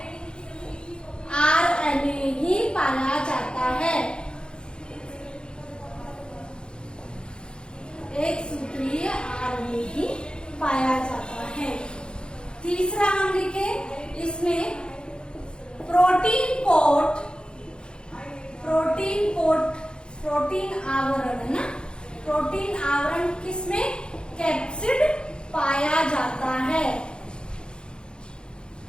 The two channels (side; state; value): right; late; 0.050 ms